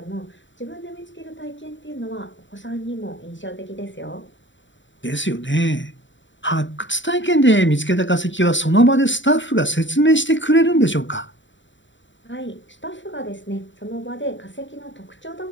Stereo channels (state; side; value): late; right; 0.54 ms